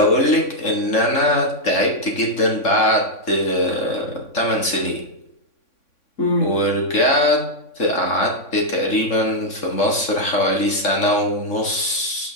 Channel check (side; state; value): right; late; 3.6 ms